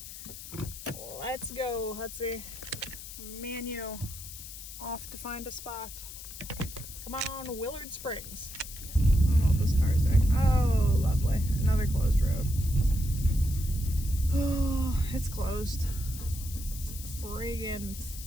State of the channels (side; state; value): left; noise; hiss, 12 dB below the sound